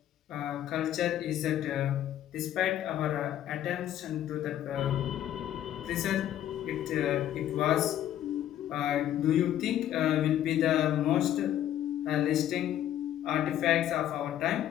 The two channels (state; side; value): quieter; right; 11.7 dB